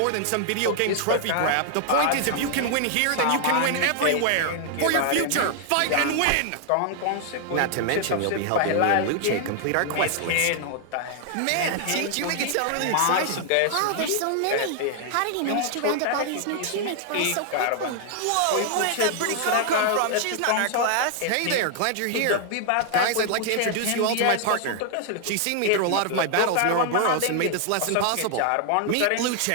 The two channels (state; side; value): different; both; correlation 0.00